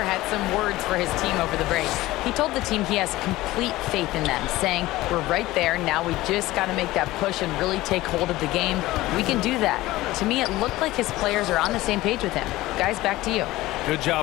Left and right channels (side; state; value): right; quieter; 17.7 dB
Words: had some words for his team over the break. He told the team he has complete faith in them, saying, we're right there. Now we just got to make that push and really take hold of the game. We can do that. To me, it looked like his players are on the same page with him. Guys, back to you. Good